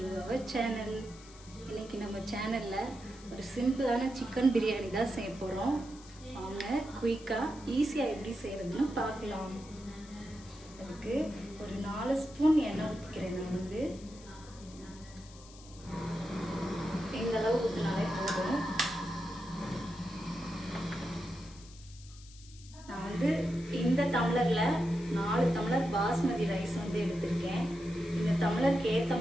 our channel. இன்றைக்கி நம்ம சேனலில் ஒரு சிம்பிளான சிக்கன் பிரியாணி தான் செய்ய போகிறோம். வாங்க குயிக்காக ஈஸியாக எப்படி செய்கிறதுன்னு பார்க்கலாம். அதுக்கு ஒரு 4 ஸ்பூன் எண்ணெய் ஊற்றிக்கிறேன். நான் இந்த அளவு ஊற்றினாலே போதும். நான் இந்த டம்ளரில் 4 டம்ளர் பாஸ்மதி ரைஸ் எடுத்திருக்கேன். இந்த டம்ளருக்கு ஏற்ற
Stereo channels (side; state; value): left; noise; hiss, 21 dB below the sound